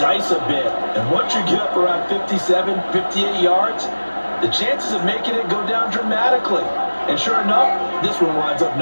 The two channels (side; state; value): both; inverted; correlation -1.00